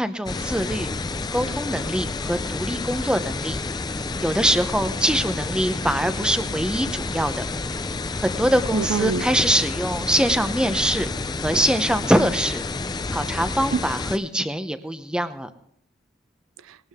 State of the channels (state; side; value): normal; both; correlation 0.71